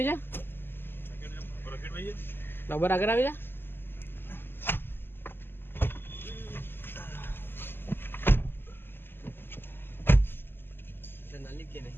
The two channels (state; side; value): late; right; 0.10 ms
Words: છે બરાબર. આગળ આવી જા.